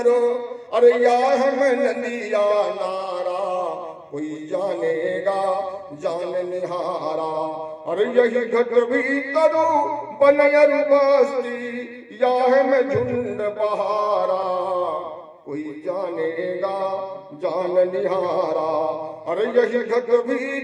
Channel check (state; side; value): identical; both; correlation 1.00